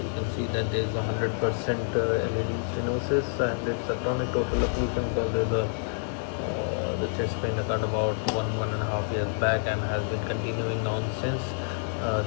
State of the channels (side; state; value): right; silent; digital silence